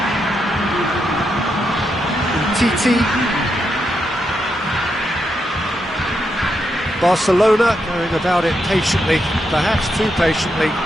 Titi. Barcelona going about it patiently, perhaps too patiently.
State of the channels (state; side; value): normal; both; correlation 0.83